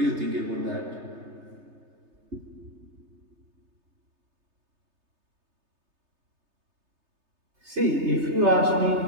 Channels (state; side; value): late; left; 3.3 ms